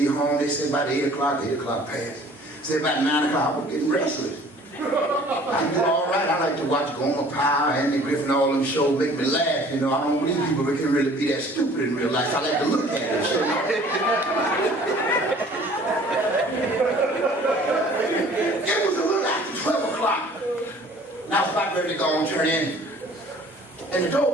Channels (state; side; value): normal; both; correlation 0.51